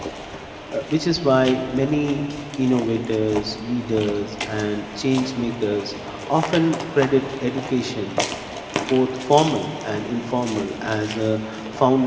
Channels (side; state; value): both; identical; correlation 1.00